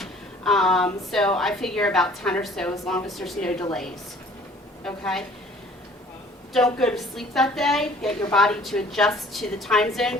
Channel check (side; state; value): both; normal; correlation 0.52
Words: So I figure about 10 or so, as long as there's no delays. Okay. Don't go to sleep that day. Get your body to adjust to the time zone.